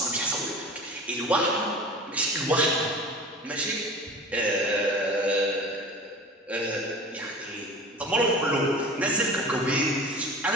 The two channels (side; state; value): both; normal; correlation 0.37